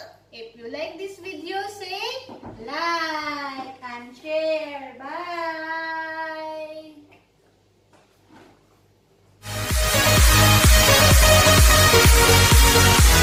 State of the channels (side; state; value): both; identical; correlation 1.00